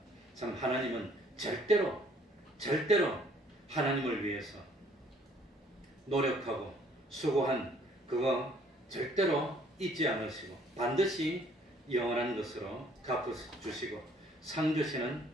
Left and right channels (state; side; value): normal; both; correlation 0.61